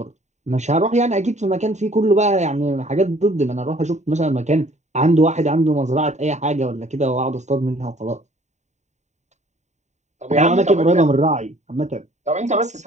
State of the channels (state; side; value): late; left; 0.34 ms